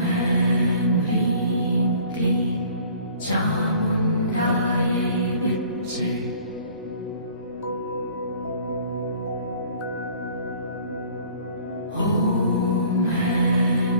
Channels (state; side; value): inverted; both; correlation -0.52